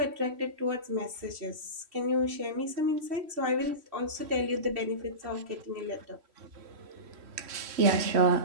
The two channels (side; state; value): left; late; 3.1 ms